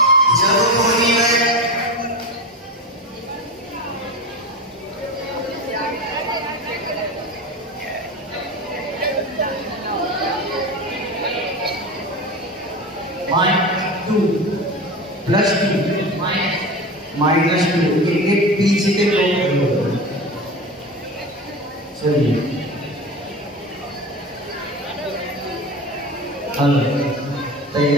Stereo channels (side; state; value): both; normal; correlation 0.27